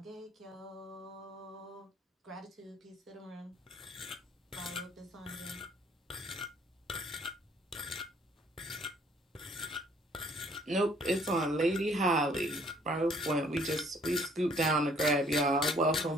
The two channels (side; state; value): both; normal; correlation 0.61